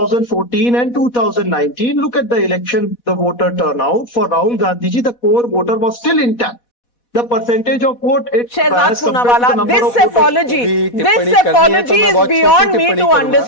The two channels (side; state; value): right; late; 4.1 ms